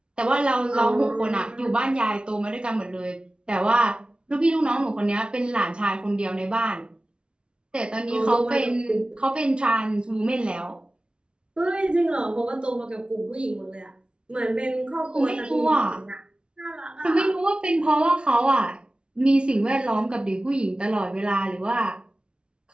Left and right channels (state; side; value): late; left; 0.056 ms